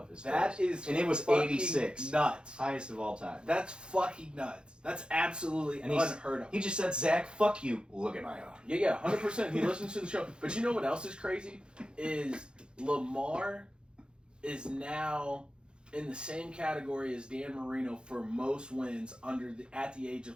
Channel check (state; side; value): late; left; 0.051 ms